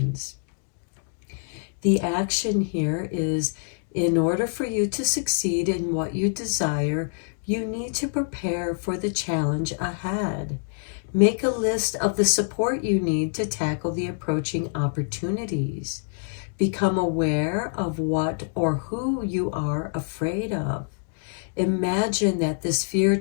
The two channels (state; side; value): silent; right; digital silence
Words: The action here is, in order for you to succeed in what you desire, you need to prepare for the challenge ahead. Make a list of the support you need to tackle the approaching opportunities. Become aware of what or who you are afraid of. Imagine that this fear